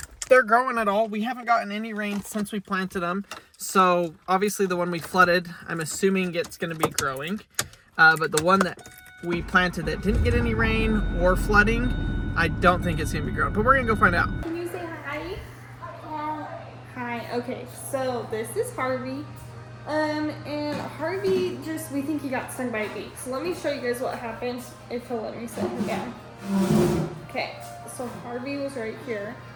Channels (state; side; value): identical; both; correlation 1.00